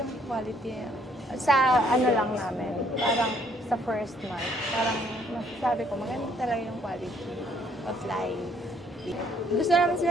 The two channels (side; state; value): both; normal; correlation 0.65